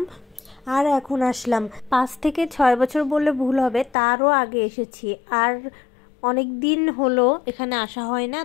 আর এখন আসলাম। 5 থেকে 6 বছর বললে ভুল হবে, তারও আগে এসেছি। আর অনেক দিন হলো এখানে আসা হয় না,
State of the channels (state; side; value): drops out; right; at 4.0 s